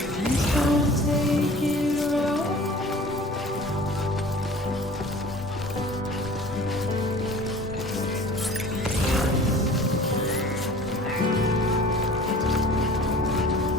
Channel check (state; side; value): normal; both; correlation 0.45